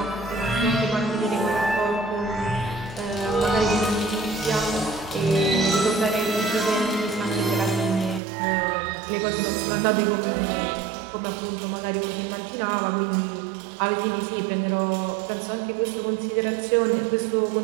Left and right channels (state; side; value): drops out; left; at 8.2 s